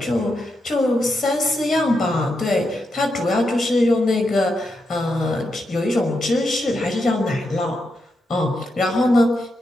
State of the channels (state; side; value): normal; both; correlation 0.84